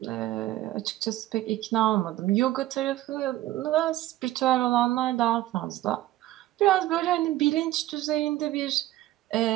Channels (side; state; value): left; quieter; 15.5 dB